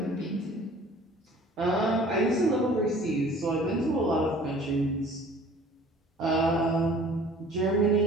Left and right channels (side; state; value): both; normal; correlation 0.49